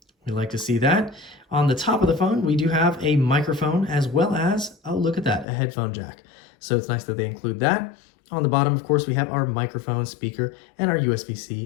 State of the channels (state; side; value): drops out; right; at 5.5 s